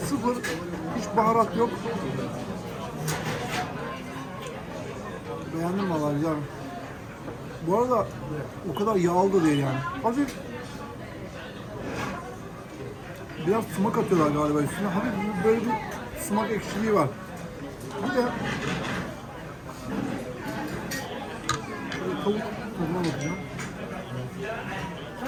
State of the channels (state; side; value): identical; both; correlation 1.00